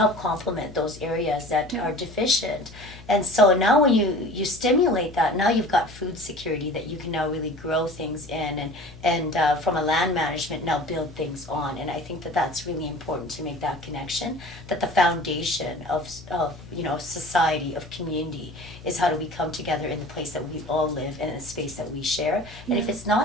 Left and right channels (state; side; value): noise; left; hum, 18 dB below the sound